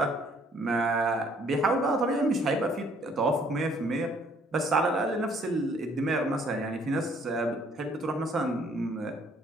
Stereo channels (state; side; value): normal; both; correlation 0.62